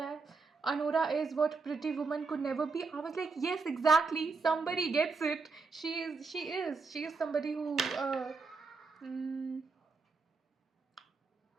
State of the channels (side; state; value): left; quieter; 4.3 dB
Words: Anora is what Pretty Woman could never be. I was like, yes, exactly. Somebody gets it. She is. She is. She is somebody who. Mm,